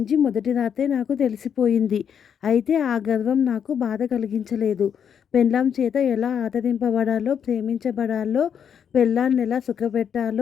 మొదటి రాత్రే నాకు తెలిసిపోయింది. అయితే ఆ గర్వం నాకు బాధ కలిగించలేదు. పెళ్ళాం చేత ఎలా ఆదరింపబడాలో, ప్రేమించబడాలో, పెళ్ళాన్నెలా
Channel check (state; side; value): quieter; right; 8.0 dB